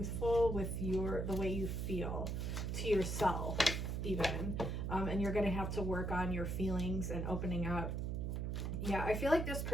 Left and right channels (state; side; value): noise; right; hum, 1 dB below the sound